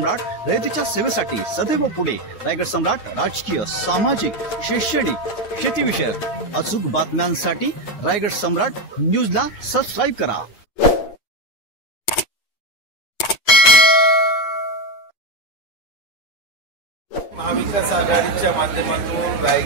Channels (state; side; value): late; right; 8.7 ms